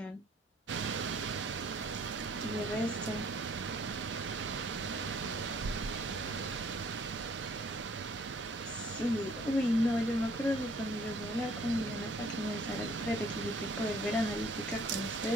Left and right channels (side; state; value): both; normal; correlation 0.60